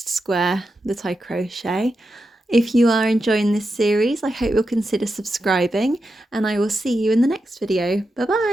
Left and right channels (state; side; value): normal; both; correlation 0.88